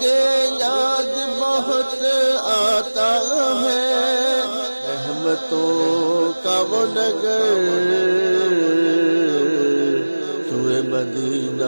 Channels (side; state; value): both; inverted; correlation -1.00